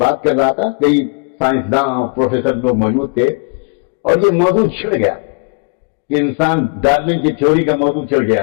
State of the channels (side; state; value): right; quieter; 35.5 dB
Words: کر رہا تھا، کئی سائنسداں اور پروفیسر لوگ موجود تھے، اور یہ موضوع چھڑ گیا کہ انسان ڈارون کی تھیوری کا موضوع چھڑ گیا.